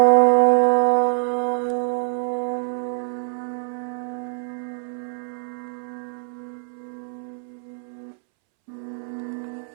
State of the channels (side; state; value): left; silent; 62 dB below the other